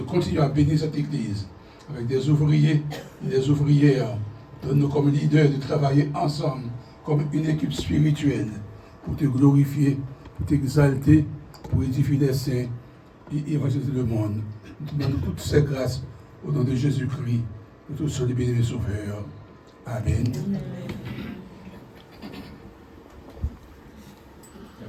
continuer à bénir cette église avec des ouvriers et des ouvrières. Donne-nous comme leaders de travailler ensemble comme une équipe spirituelle pour te glorifier, pour t'exalter, pour édifier les saints et évangéliser le monde. Nous te demandons toutes ces grâces au nom de Jésus-Christ, notre seul et béni Sauveur. Amen.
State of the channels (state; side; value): identical; both; correlation 1.00